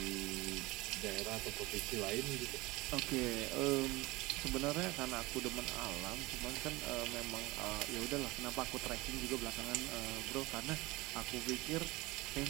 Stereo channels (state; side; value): quieter; left; 21.6 dB